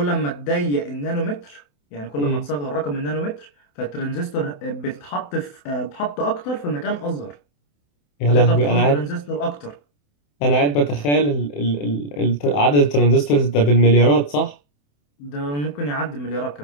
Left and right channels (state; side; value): late; right; 28 ms